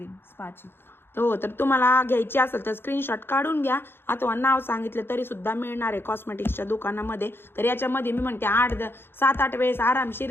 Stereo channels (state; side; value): late; right; 0.11 ms